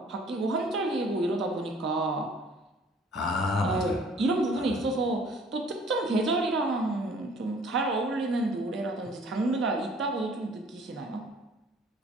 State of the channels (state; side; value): normal; both; correlation 0.54